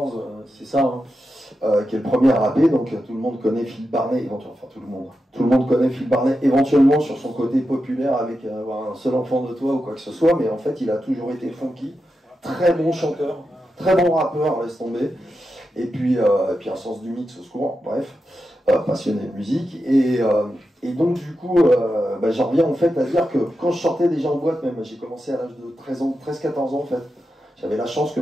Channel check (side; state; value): both; normal; correlation 0.89